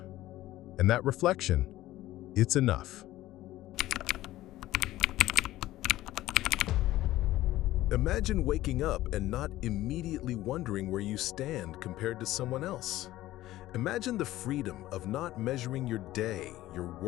And that reflection, it's enough. Imagine waking up and not immediately wondering where you stand compared to someone else. Imagine the freedom of not measuring your day, your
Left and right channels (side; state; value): right; quieter; 15.6 dB